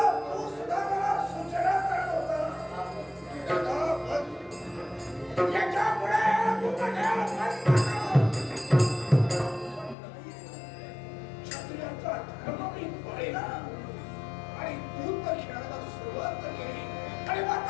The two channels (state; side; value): drops out; right; at 10.0 s